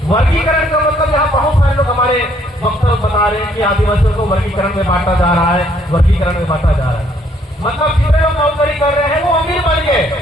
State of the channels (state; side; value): normal; both; correlation 0.66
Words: वर्गीकरण का मतलब यहाँ बहुत सारे लोग हमारे वक्तव्य बता रहे हैं कि आदिवासियों को वर्गीकरण में बांटा जा रहा है, वर्गीकरण में बांटा जा रहा है। मतलब जितने लोग नौकरी कर रहे हैं वो अमीर बन गए,